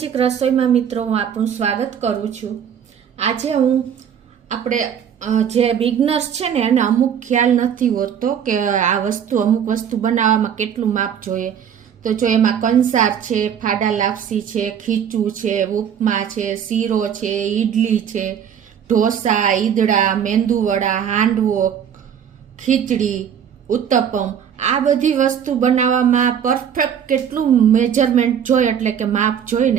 રસોઈમાં મિત્રો હું આપનું સ્વાગત કરું છું। આજે હું આપણે જે બિગનર્સ છે ને એને અમુક ખ્યાલ નથી હોતો કે આ અમુક વસ્તુ બનાવવામાં કેટલું માપ જોઈએ। તો જો એમાં કંસાર છે, ફાડા લાપસી છે, ખીચું છે, ઉપમા છે, શીરો છે, ઈડલી છે, ઢોસા, ઈદડા, મેંદુવડા, હાંડવો, ખીચડી, ઉત્તપમ, આ બધી વસ્તુ બનાવવામાં પરફેક્ટ કેટલું મેજરમેન્ટ જોઈએ એટલે કે માપ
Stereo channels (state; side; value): quieter; left; 8.4 dB